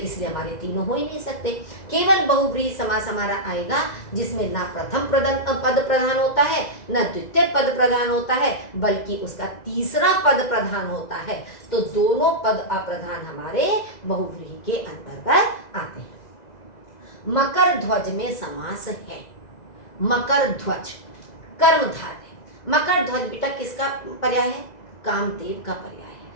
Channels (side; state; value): right; late; 2.0 ms